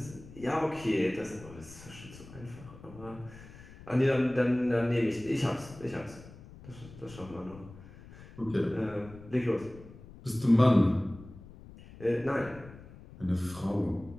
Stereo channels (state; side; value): noise; left; rumble, 18 dB below the sound